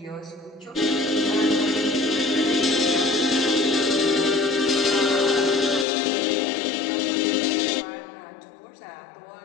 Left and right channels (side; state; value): right; drops out; at 5.9 s